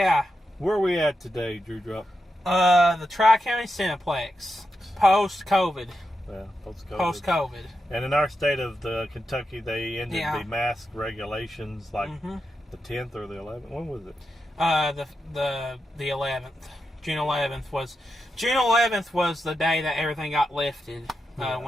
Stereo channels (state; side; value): normal; both; correlation 0.87